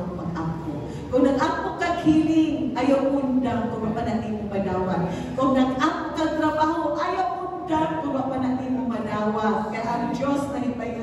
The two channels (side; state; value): both; identical; correlation 1.00